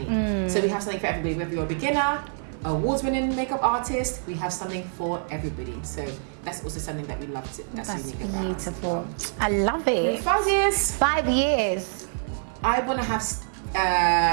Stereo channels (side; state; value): left; silent; 61 dB below the other